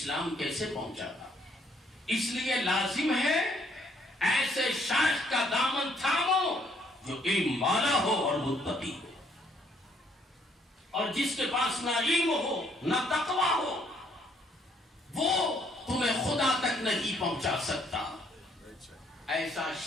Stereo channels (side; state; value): both; normal; correlation 0.67